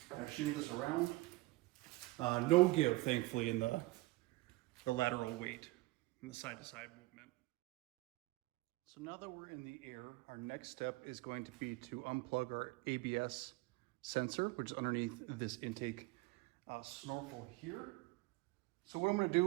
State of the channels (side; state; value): left; quieter; 21.1 dB